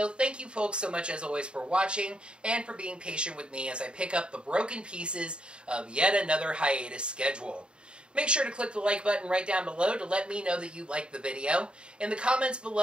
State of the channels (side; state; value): left; late; 0.053 ms